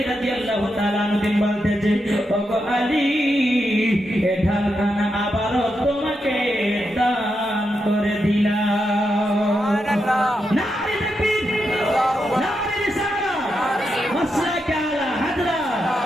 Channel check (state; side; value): normal; both; correlation 0.85